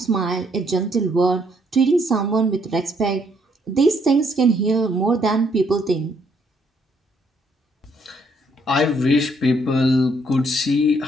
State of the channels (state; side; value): normal; both; correlation 0.70